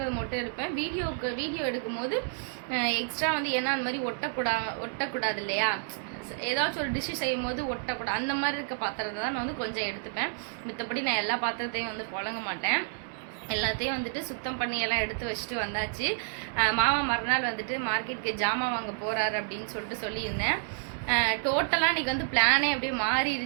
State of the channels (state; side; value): silent; left; digital silence